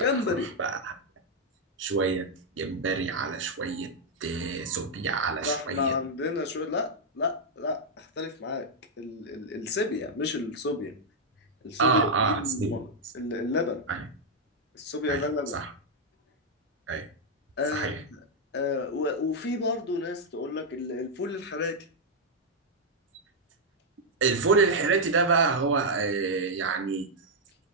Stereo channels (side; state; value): both; normal; correlation -0.02